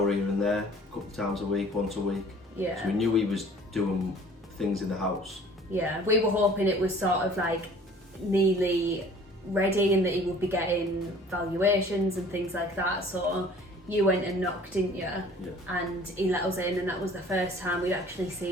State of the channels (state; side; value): normal; both; correlation 0.50